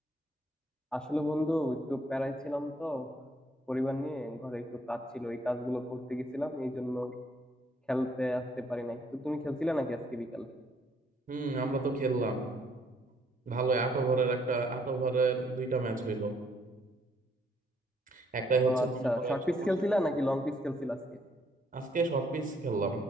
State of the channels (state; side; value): normal; both; correlation 0.68